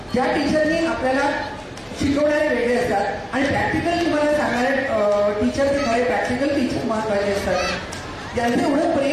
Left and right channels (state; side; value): identical; both; correlation 1.00